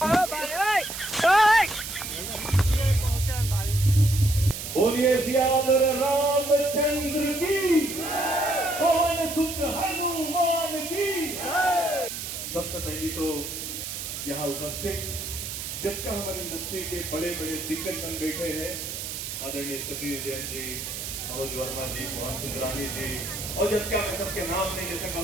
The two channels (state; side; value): noise; right; hiss, 6 dB below the sound